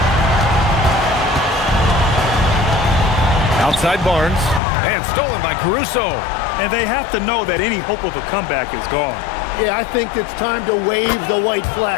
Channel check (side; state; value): right; drops out; at 4.6 s